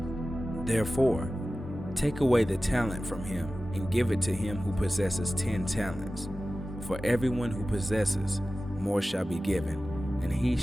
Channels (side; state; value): both; normal; correlation 0.95